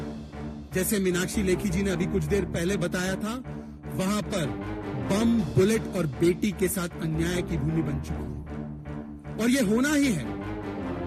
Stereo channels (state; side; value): identical; both; correlation 1.00